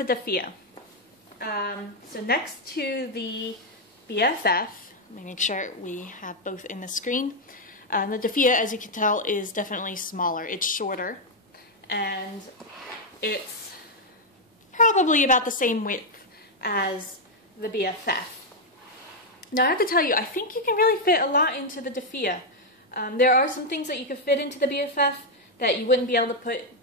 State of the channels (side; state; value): both; normal; correlation 0.00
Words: Defea. So next to the BFF, let me make sure we have both in the screen. The Defea, as you can tell, is definitely smaller. It's shorter, and it's probably about the same width as the BFF. Now I have to tell you, I think you can really fit a lot into the Defea. There are some things that you could fit into the BFF that you wouldn't be able to put